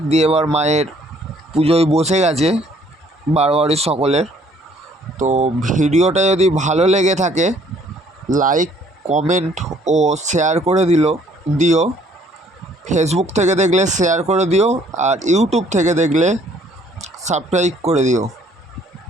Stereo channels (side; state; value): both; normal; correlation 0.61